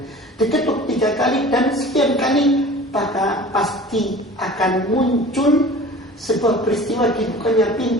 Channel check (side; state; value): both; normal; correlation 0.42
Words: Diketuk 3 kali dan sekian kali, maka pasti akan muncul sebuah peristiwa dibukanya